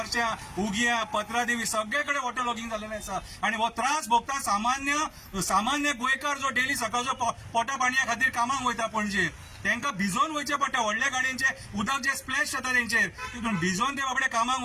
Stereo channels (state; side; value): identical; both; correlation 1.00